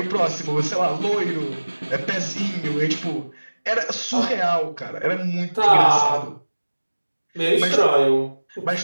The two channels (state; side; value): inverted; both; correlation -1.00